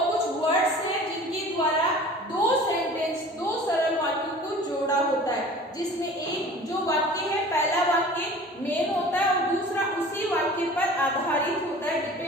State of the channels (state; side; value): normal; both; correlation 0.43